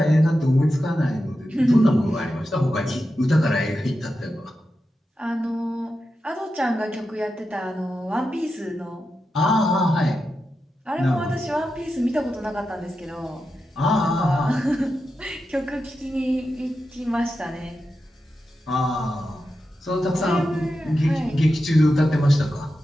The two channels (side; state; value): both; normal; correlation 0.90